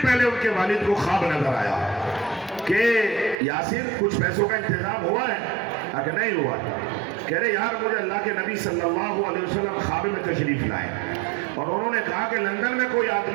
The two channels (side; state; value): left; drops out; at 3.4 s